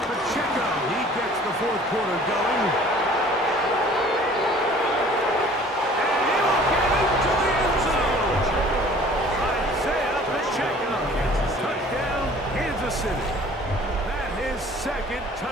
Pacheco. He gets the 4th quarter going. And he will get into the end zone. Isaiah Pacheco. Touchdown, Kansas City. That is 2nd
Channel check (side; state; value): both; normal; correlation 0.50